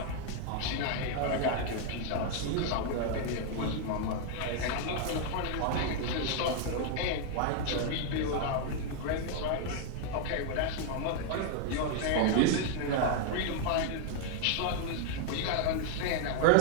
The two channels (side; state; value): both; different; correlation 0.00